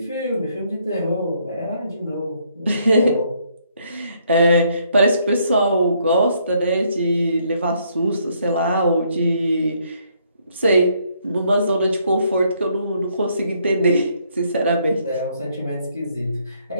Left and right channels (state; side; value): inverted; both; correlation -0.70